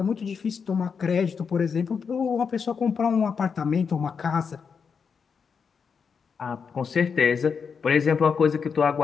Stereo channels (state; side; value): quieter; right; 6.1 dB